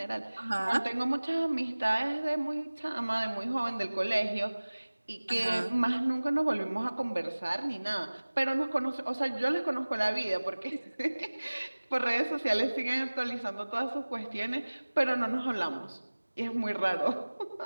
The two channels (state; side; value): inverted; both; correlation -1.00